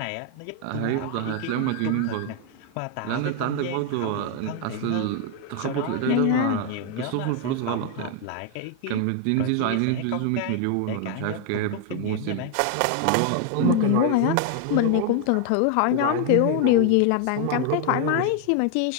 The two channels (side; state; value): both; different; correlation 0.00